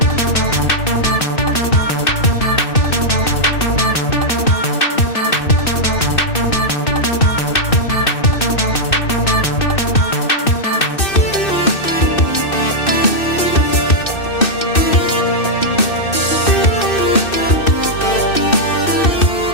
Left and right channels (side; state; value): right; late; 2.6 ms